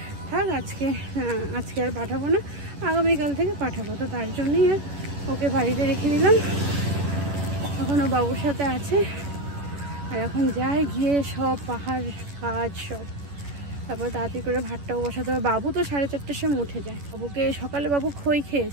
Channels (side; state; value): left; late; 11 ms